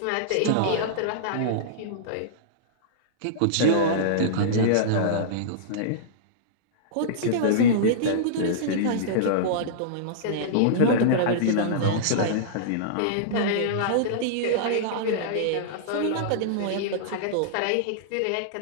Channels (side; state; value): both; different; correlation -0.03